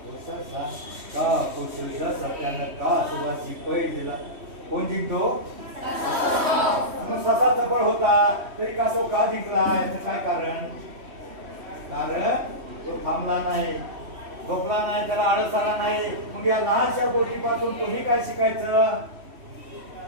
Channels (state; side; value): late; left; 3.1 ms